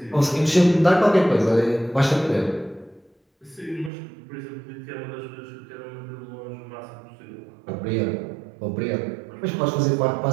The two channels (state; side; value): drops out; left; at 3.9 s